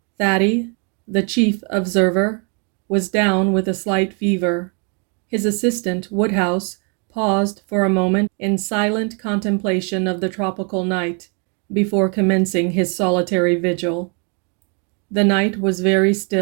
Thady, the chief observer, was down with a slight fever. His assistant, Woodhouse, paused for a moment in silent contemplation of the tropical night before commencing his solitary vigil. The night was very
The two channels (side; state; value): left; quieter; 36.9 dB